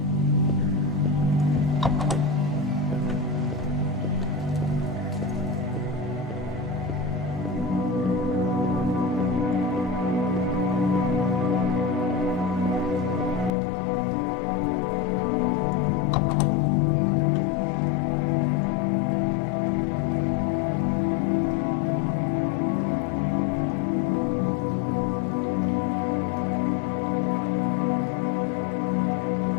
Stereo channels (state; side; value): drops out; right; at 13.5 s